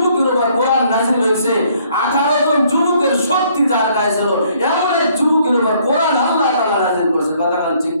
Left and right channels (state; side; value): inverted; both; correlation -0.64